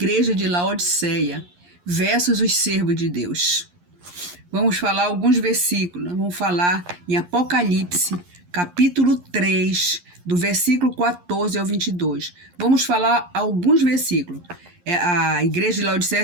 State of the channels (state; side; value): late; left; 11 ms